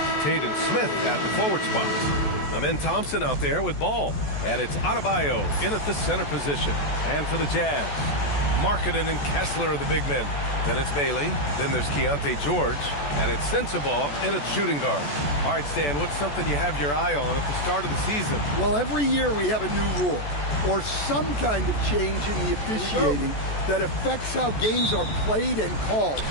Taden Smith at the forward spot. Amen Thompson out there with ball. And it's Adebayo in at the center position. And for the Jazz, Markkanen and Kessler are the big men. Then it's Bailey. Then there's Keontae George. And it's Sensabaugh in at shooting guard. All right, Stan, what's something you have your eye on at the start of the season? Well, every year we have a new rule or some kind of change in the officiating that affects how games are played and called.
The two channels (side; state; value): right; late; 14 ms